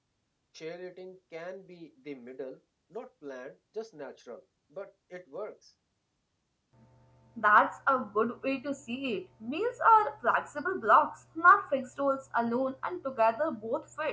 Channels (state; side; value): identical; both; correlation 1.00